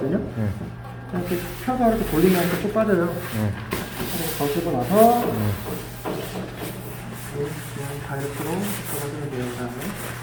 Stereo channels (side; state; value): both; identical; correlation 1.00